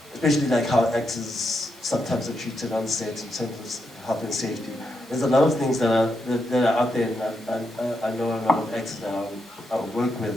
especially like how actors sometimes are treated on set, in terms of health and safety. There's a lot of things that are out there, and I know a lot of actors that I work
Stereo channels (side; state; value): right; noise; hiss, 26 dB below the sound